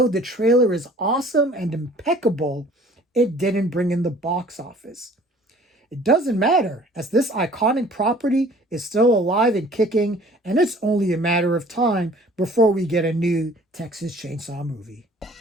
the trailer is awesome and impeccable, it didn't bring in the box office. It doesn't matter, as this iconic property is still alive and kicking, and it's only a matter of time before we get a new Texas Chainsaw movie.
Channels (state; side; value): normal; both; correlation 0.51